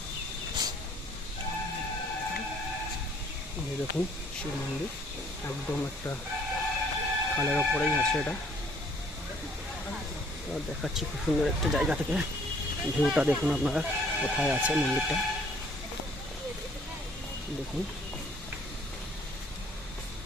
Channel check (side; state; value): both; normal; correlation 0.60